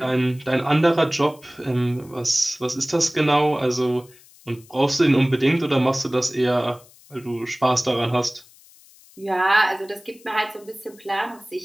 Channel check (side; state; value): left; noise; hiss, 26 dB below the sound